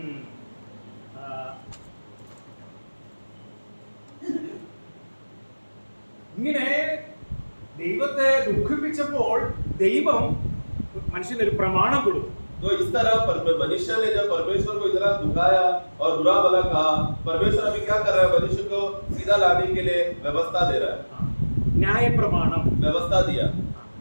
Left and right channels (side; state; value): both; inverted; correlation -1.00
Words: ഇങ്ങനെ ദൈവത്തെ ദുഃഖിപ്പിച്ചപ്പോൾ ദൈവം മനുഷ്യനൊരു പ്രമാണം കൊടുത്തു. तो इस तरह मनुष्य ने जब परमेश्वर को इतना दुखाया और बुरा भला कहा, परमेश्वर अभी क्या कर रहा है? मनुष्य को सीधा लाने के लिए व्यवस्था दे रहा है। ന്യായ പ്രമാണം व्यवस्था दिया।